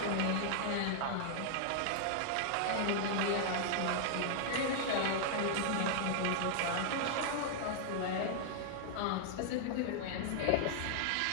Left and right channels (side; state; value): both; different; correlation -0.01